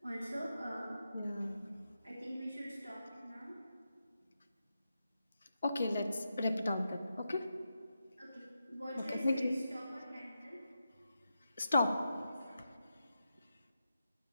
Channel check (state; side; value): inverted; both; correlation -0.88